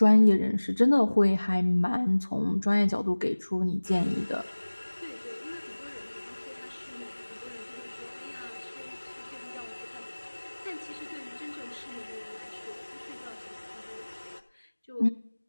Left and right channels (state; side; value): inverted; both; correlation -1.00